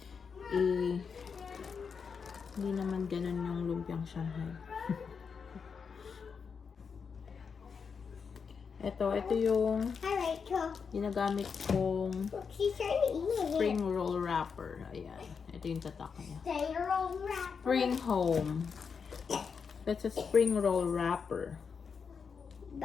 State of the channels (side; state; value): right; quieter; 5.9 dB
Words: Hindi naman ganun yung lumpiang Shanghai. Ito yung Hi, Rachel. ginagamit kong Look, she's trying to eat it. spring roll wrapper. Ayan. Ito yung tatak niya. Stay roll wrap. Spring home. That's a spring roll wrapper.